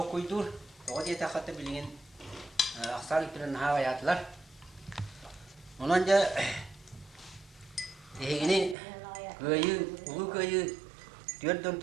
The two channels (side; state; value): left; drops out; at 8.8 s